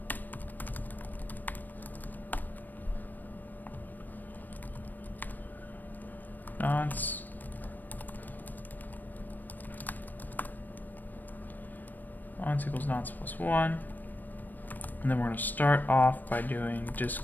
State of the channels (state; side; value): late; right; 0.088 ms